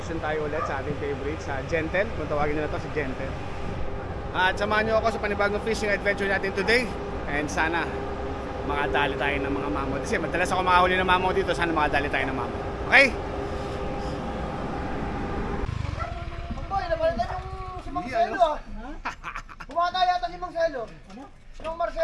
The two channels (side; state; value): both; identical; correlation 1.00